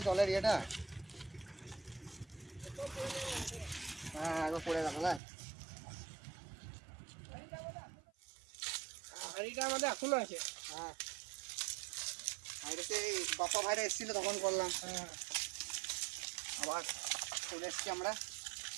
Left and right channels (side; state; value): left; drops out; at 5.2 s